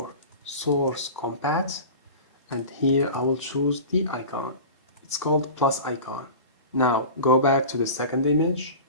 source compat, and here I will choose the icon. It's called plus icon. Now go back to the second image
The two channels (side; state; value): both; inverted; correlation -0.34